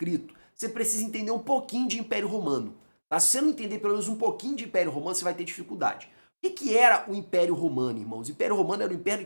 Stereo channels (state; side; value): inverted; both; correlation -1.00